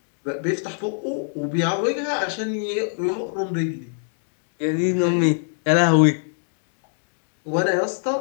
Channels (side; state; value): right; silent; digital silence